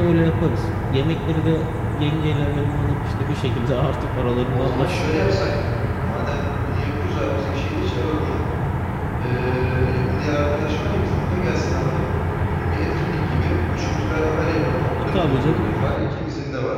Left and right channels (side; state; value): both; identical; correlation 1.00